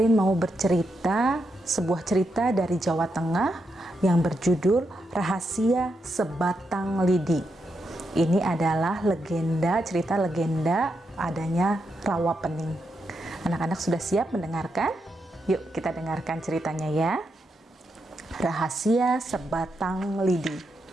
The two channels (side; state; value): both; normal; correlation 0.83